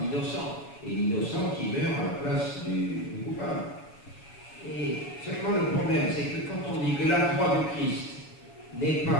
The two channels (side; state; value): right; late; 7.2 ms